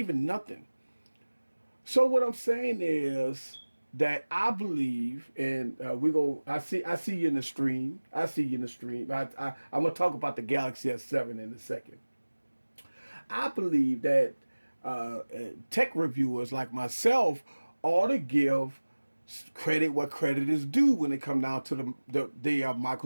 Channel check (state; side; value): inverted; both; correlation -1.00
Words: nothing. So what I'm saying is that I believe, and I see you in the stream. I see you in the stream. I'm gonna talk about the Galaxy S7 in a second. I believe that tech reviewers like myself ought to give credit what credit is due when it comes down to the